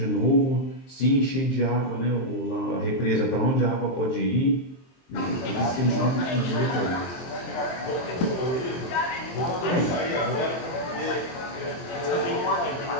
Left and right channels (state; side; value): late; right; 23 ms